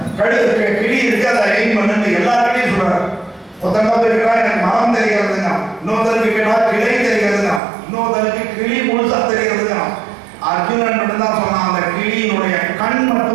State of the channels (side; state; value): left; drops out; at 7.6 s